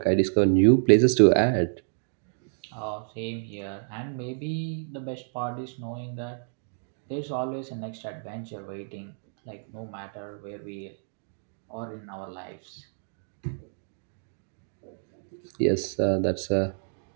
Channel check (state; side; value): silent; left; digital silence